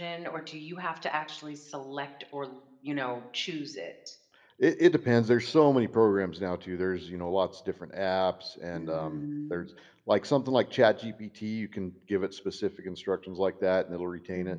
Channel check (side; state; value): both; identical; correlation 1.00